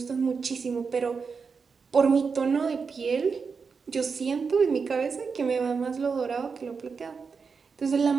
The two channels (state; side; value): quieter; left; 5.3 dB